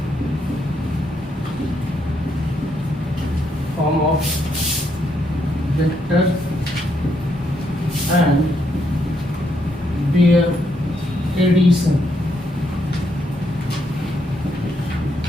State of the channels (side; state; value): both; normal; correlation 0.76